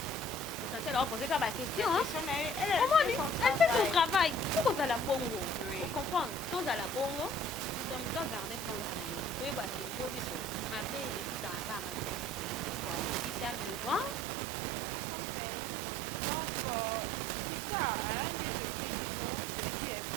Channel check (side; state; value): left; drops out; at 14.2 s